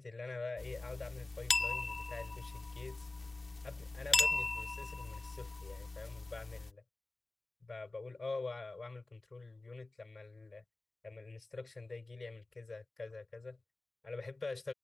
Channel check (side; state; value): right; quieter; 3.1 dB